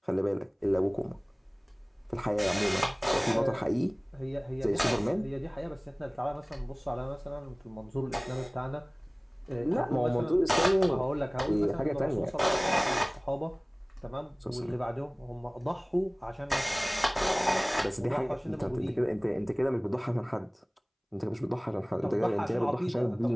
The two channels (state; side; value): identical; both; correlation 1.00